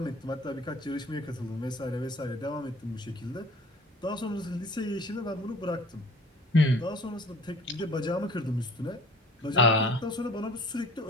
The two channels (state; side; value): normal; both; correlation 0.48